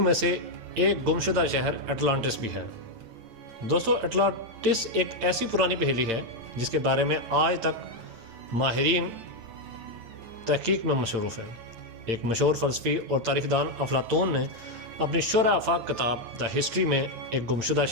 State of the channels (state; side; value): late; left; 8.9 ms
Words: میں سے ایک گمشدہ شہر اٹلانٹس بھی ہے۔ دوستو، اٹلانٹس ایک ایسی پرانی پہیلی ہے جس کے بارے میں آج تک ماہرین تحقیق میں مصروف ہیں۔ ایک مشہور فلسفی اور تاریخ دان افلاطون نے اپنی شرح آفاق کتاب دا ہسٹری میں ایک گمشدہ